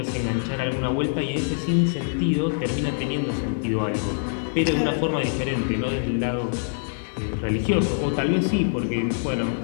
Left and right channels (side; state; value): right; silent; digital silence